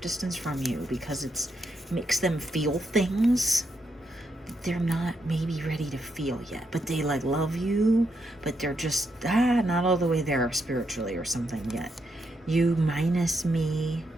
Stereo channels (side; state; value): both; normal; correlation 0.80